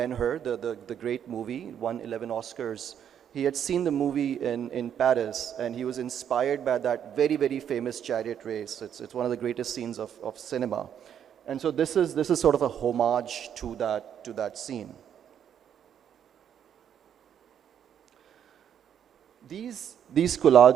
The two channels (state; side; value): quieter; left; 9.0 dB